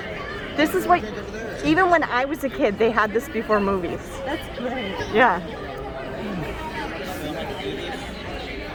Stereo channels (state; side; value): identical; both; correlation 1.00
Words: This is what, even when I was a kid, they had this before movies. That's great. Yeah.